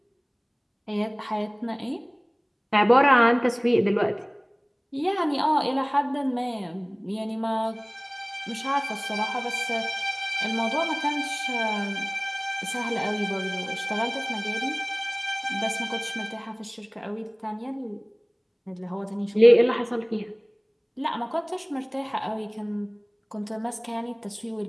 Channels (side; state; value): both; identical; correlation 1.00